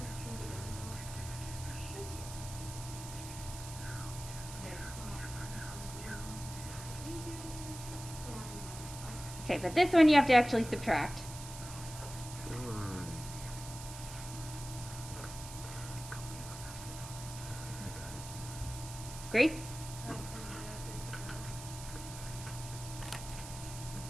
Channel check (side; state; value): right; noise; hiss, 11 dB below the sound